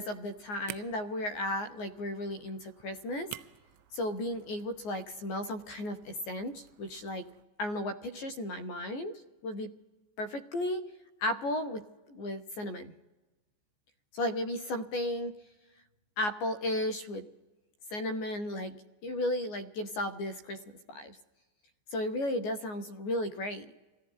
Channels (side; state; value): right; late; 14 ms